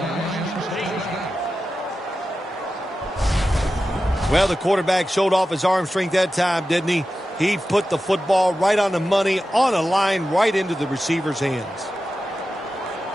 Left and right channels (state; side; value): normal; both; correlation 0.92